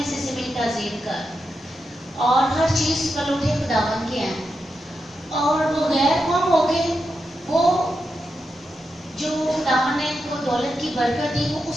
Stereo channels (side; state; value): both; normal; correlation 0.87